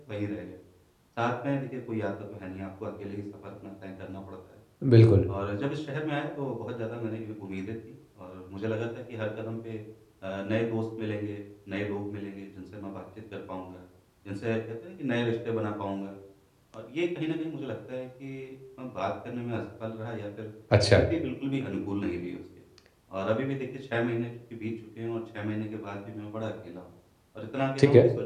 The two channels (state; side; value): identical; both; correlation 1.00